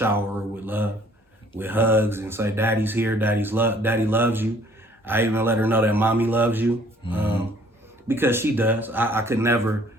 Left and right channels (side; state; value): both; normal; correlation 0.58